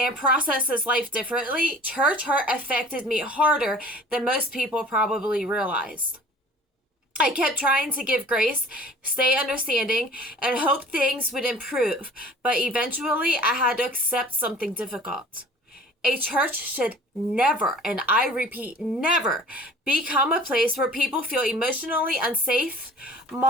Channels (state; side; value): normal; both; correlation 0.47